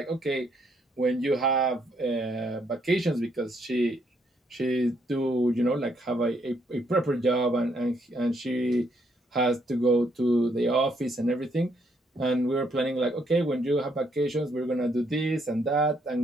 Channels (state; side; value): normal; both; correlation 0.72